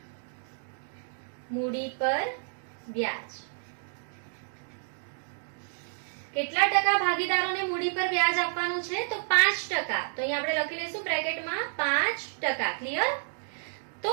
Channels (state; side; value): silent; left; digital silence